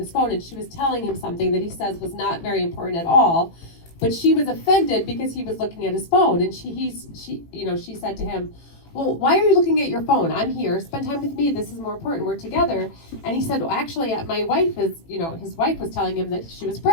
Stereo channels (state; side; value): late; right; 18 ms